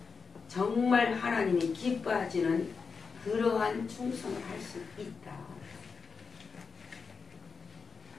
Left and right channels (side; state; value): right; quieter; 5.2 dB